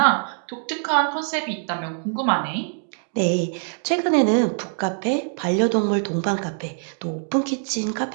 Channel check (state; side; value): silent; left; 61 dB below the other